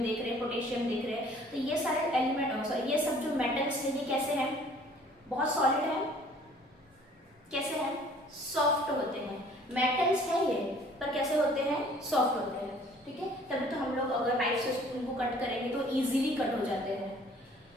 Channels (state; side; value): normal; both; correlation 0.54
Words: देख रहे हैं, पोटेशियम देख रहे हैं, तो ये सारे एलिमेंट, ये सब जो मेटल्स हैं, ये कैसे हैं, बहुत सॉलिड है, कैसे हैं, सॉफ्ट होते हैं। मेटल्स है ये, पर कैसे होते हैं, सॉफ्ट होते हैं, ठीक है। तभी तो हम लोग अगर राइट से स्पून को कट करेंगे तो इजीली कट हो जाते हैं।